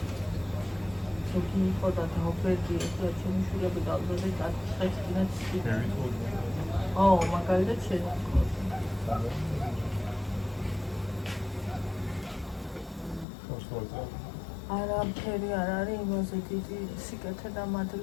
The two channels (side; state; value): right; drops out; at 13.2 s